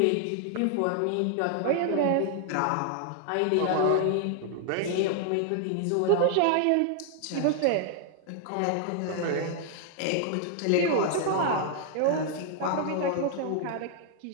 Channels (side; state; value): both; different; correlation 0.00